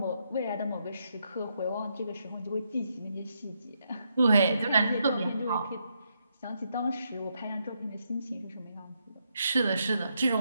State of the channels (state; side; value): inverted; both; correlation -0.79